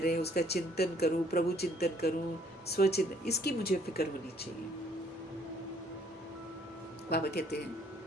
रहे हैं उसका चिंतन करूं, प्रभु चिंतन करूं, स्वचिंतन, इसकी मुझे फिक्र होनी चाहिए। बाबा कहते हैं,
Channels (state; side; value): normal; both; correlation 0.62